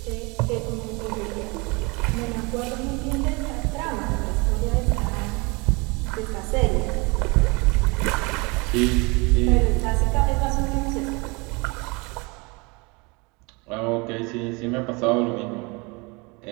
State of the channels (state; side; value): quieter; left; 27.8 dB